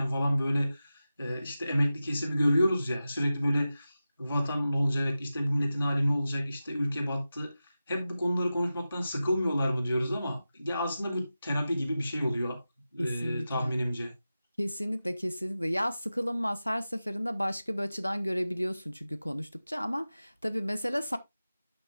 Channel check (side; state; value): both; inverted; correlation -0.94